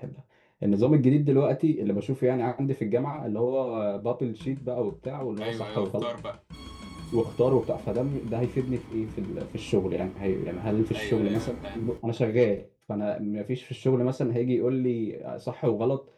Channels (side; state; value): both; identical; correlation 1.00